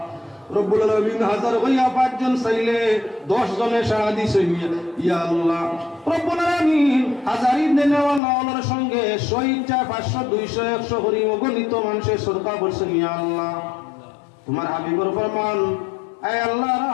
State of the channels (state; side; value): drops out; right; at 8.2 s